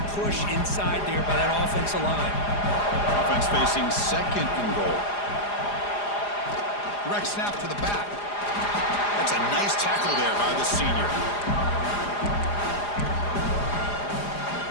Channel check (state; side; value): late; right; 4.9 ms